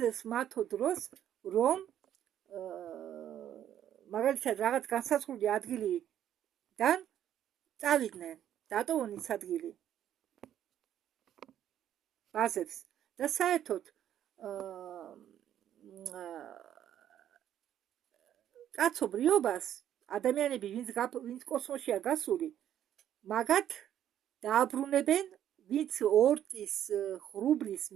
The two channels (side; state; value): left; quieter; 10.8 dB